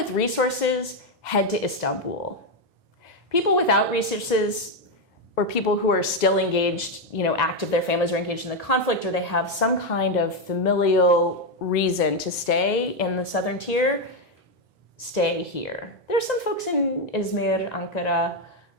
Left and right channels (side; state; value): both; normal; correlation 0.05